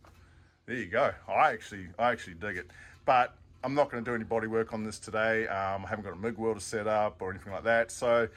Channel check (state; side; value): identical; both; correlation 1.00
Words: there you go. I actually dig it. But I'm not going to do any body work on this today. I haven't got a MIG welder set up or anything like that. So